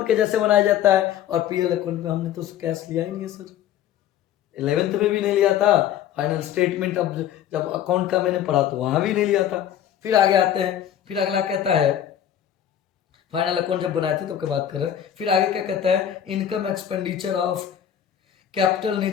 के जैसे बनाया जाता है, और पीएल अकाउंट में हमने तो कैश लिया ही नहीं है सर, 11th में भी नहीं लिया था, फाइनल स्टेटमेंट अब जब अकाउंट का मैंने पढ़ा तो वहां भी नहीं लिया था। फिर आगे आते हैं, फिर अगला कहता है, फाइनल अकाउंट जब बनाए थे तो क्या बात कर रहे हैं। फिर आगे क्या कहता है, income expenditure of capital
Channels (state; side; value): quieter; right; 10.3 dB